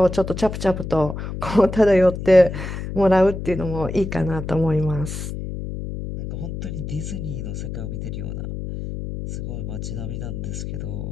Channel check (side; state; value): left; noise; hum, 6 dB below the sound